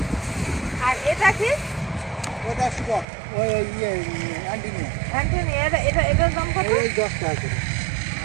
আর এটা কি? ওটা স্টক, ওই অ্যান্টিনিয়াম, অ্যান্টনি, এটার দাম কত? ওই 10 টাকা করে।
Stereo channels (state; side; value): drops out; left; at 3.1 s